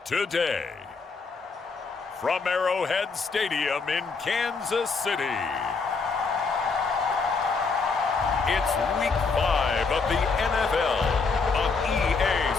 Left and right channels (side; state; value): right; quieter; 4.6 dB